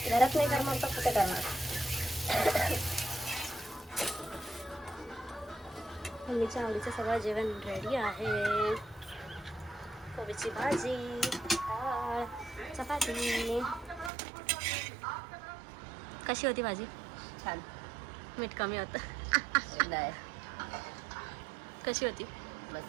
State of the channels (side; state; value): left; drops out; at 14.1 s